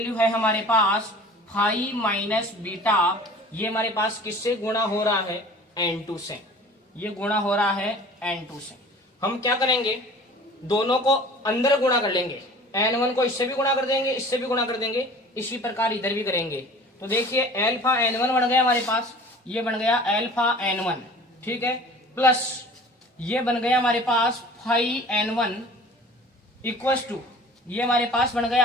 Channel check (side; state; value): both; normal; correlation 0.44